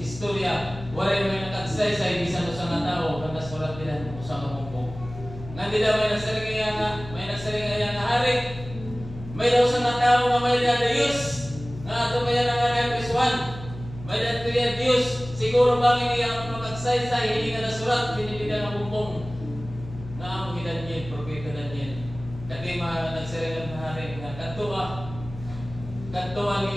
waray may nag-agsaysay, bisan sa nga tao, ang nasulat nila sa kabumbong. Nga nila may nagsaringaya nga hari, may daw sa nga tao nga may na Diyos, nga ato kaya nga Kriswan, may na Diyos, siguro bangin niya ang mag-agsaysay, hindi nga nasulat, hindi nila nga bumbong. Nga ang Daniel, propeta Daniel. Kati nagsaringan nga hari, nga kantuan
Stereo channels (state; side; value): noise; left; hum, 13 dB below the sound